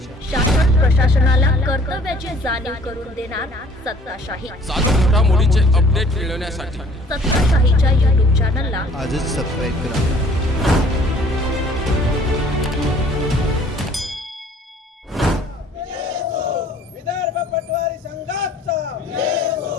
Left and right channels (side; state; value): both; normal; correlation 0.55